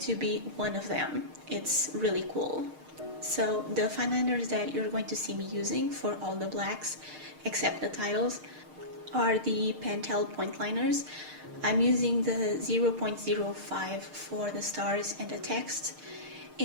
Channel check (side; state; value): left; late; 6.5 ms